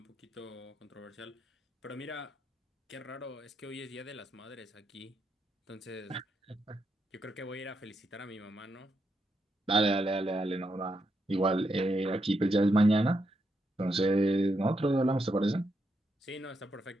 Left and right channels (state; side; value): normal; both; correlation 0.81